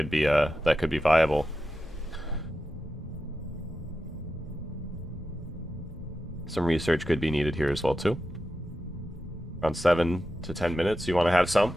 be viable. Some research could be needed here as well too. Around 7 to 10 minutes. You want to have some?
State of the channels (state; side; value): normal; both; correlation 0.90